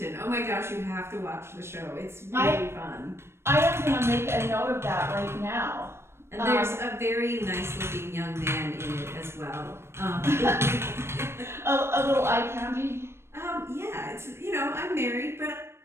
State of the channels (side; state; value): left; late; 0.12 ms